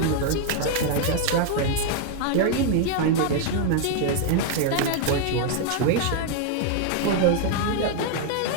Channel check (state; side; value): different; both; correlation 0.00